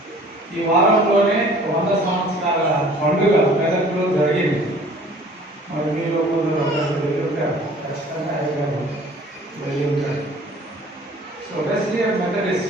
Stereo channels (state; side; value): normal; both; correlation 0.51